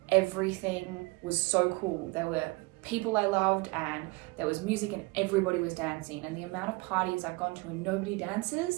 Everything was so cool. There were people I loved, and there was music, and everybody was dancing. And the amount of parties I've gone to and nobody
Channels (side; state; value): left; quieter; 25.4 dB